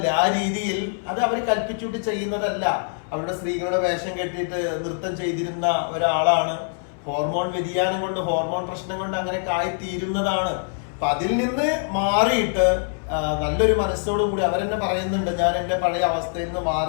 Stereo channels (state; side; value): silent; right; 62 dB below the other